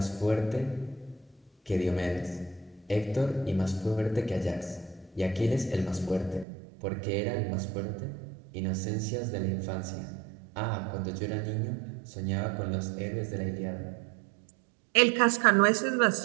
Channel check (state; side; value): drops out; left; at 6.5 s